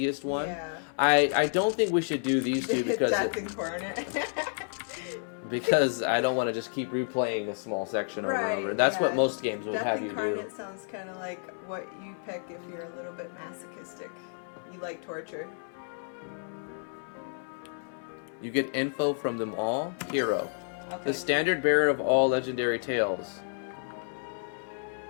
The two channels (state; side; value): silent; right; digital silence